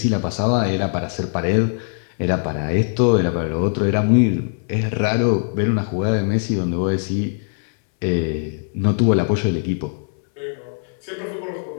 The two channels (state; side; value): silent; right; 65 dB below the other